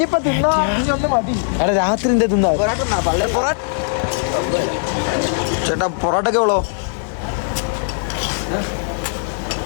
രാത്രി എന്താ തിന്നാ ചേട്ടാ? പൊറോട്ടൊക്കെ ഉള്ളോ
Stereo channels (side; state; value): right; silent; digital silence